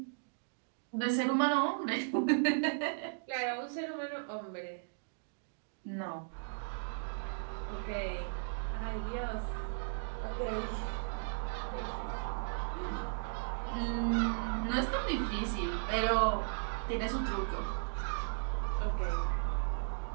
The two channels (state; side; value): silent; left; digital silence